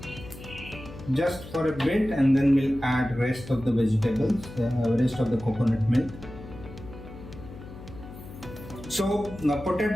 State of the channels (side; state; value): left; noise; hum, 15 dB below the sound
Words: Just for a bit, and then we'll add rest of the vegetables, rest of the coconut milk. So